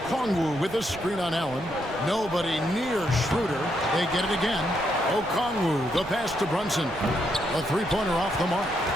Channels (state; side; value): noise; right; rumble, 17 dB below the sound